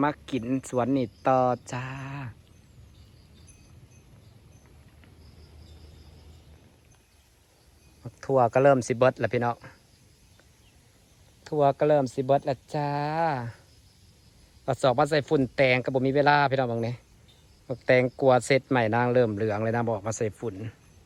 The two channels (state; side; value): identical; both; correlation 1.00